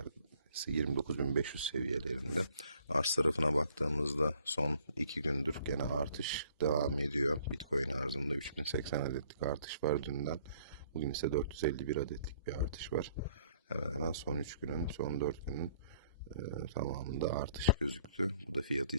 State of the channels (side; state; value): both; inverted; correlation -0.61